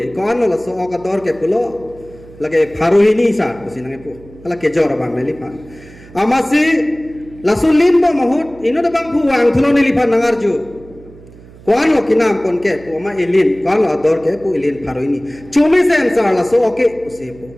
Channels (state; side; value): noise; right; hum, 21 dB below the sound